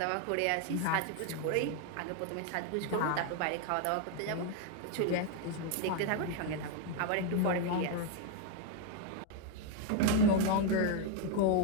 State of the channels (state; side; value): different; both; correlation 0.01